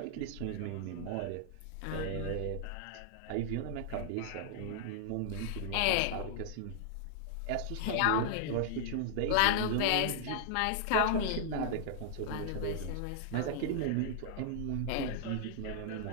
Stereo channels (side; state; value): both; different; correlation -0.01